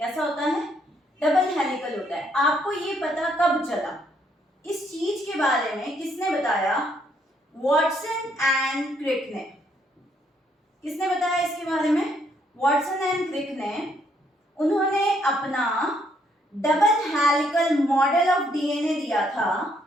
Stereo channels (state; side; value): normal; both; correlation 0.71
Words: होता है? डबल हेलिकल होता है। आपको ये पता कब चला? इस चीज के बारे में किसने बताया? वॉटसन एंड क्रिक ने। किसने बताया इसके बारे में? वॉटसन एंड क्रिक ने। उन्होंने अपना double helical model of DNA दिया था